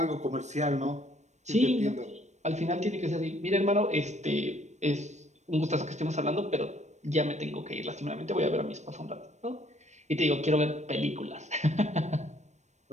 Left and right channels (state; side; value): late; left; 0.34 ms